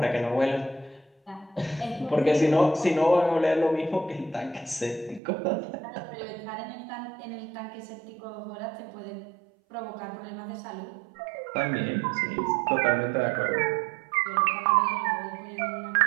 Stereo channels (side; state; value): left; drops out; at 5.2 s